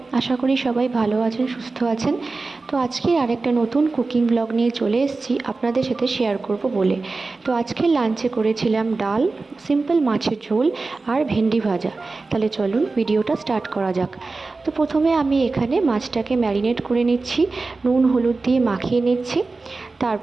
আশা করি সবাই ভালো আছেন, সুস্থ আছেন। তো আজকে আরেকটা নতুন কুকিং ব্লগ নিয়ে চলে এসেছি আপনাদের সাথে শেয়ার করব বলে। তো আজকে লাঞ্চে করেছিলাম ডাল, সিম্পল মাছের ঝোল আর ভেন্ডি ভাজা। তাহলে চলুন ভিডিওটা স্টার্ট করা যাক। তো প্রথমে আমি এখানে মাছটাকে ম্যারিনেট করে নিচ্ছি, নুন হলুদ দিয়ে মাখিয়ে নিচ্ছি,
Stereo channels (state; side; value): quieter; left; 3.7 dB